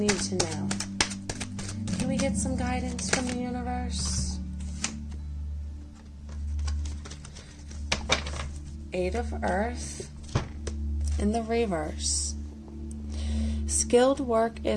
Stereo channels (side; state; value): both; identical; correlation 1.00